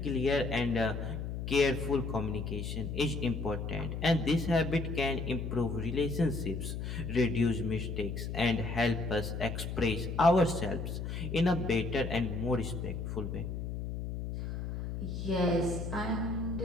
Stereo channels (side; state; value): left; noise; hum, 5 dB below the sound